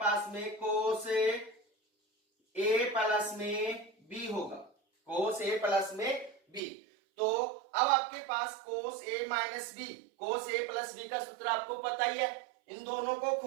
में, कोस ए प्लस में बी होगा, कोस ए प्लस में बी। तो अब आपके पास कोस ए माइनस बी, कोस ए प्लस बी का सूत्र आपको पता ही है, इन दोनों को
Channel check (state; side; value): drops out; left; at 6.6 s